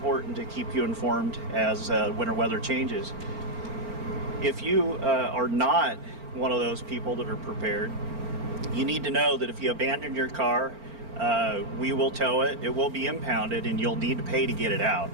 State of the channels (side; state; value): left; late; 4.4 ms